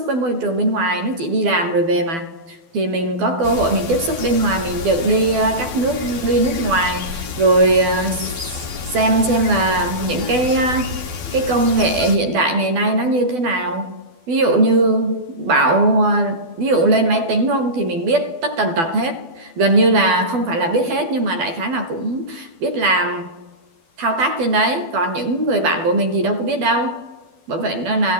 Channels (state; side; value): late; left; 12 ms